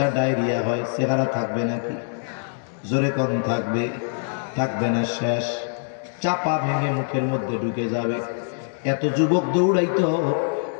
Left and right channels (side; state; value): right; silent; digital silence